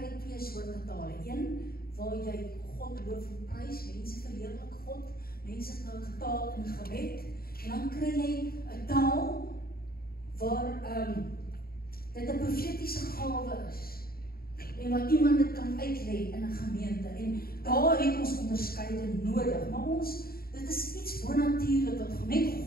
twee soorte tale. Een waar jy God loof en prys, mense verheerlik God, mense taal in gebed, en dan kry jy 'n taal waar dit 'n profetiese gawe is, en wat iemand dit kan uitlê in 'n gemeente, en daar het ons onderskeiding nodig, maar dit is iets bonatuurlik wat net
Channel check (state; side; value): late; right; 0.44 ms